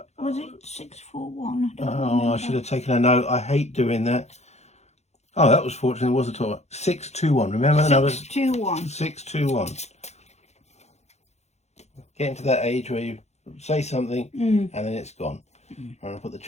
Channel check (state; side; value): late; right; 0.32 ms